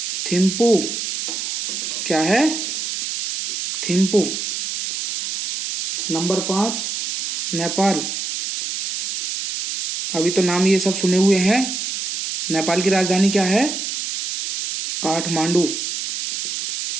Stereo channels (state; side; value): noise; right; hiss, 4 dB below the sound